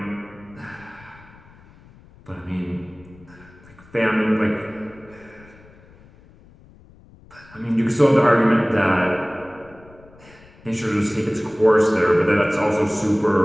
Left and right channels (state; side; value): noise; left; rumble, 25 dB below the sound